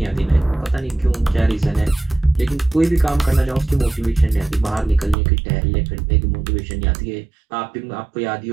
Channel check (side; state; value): left; drops out; at 5.2 s